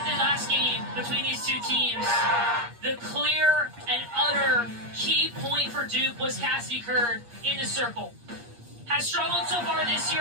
the last game between these two teams, the clear and utter key point for Duke was Cassidy Curd in the circle. Has struggled so far this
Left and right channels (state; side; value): late; left; 8.5 ms